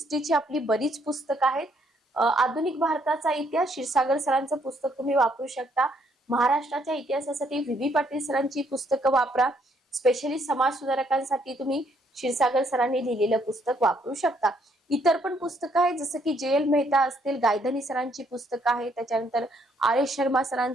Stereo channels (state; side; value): normal; both; correlation 0.69